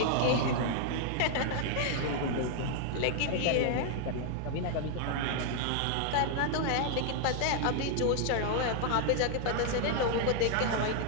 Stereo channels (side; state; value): both; different; correlation 0.00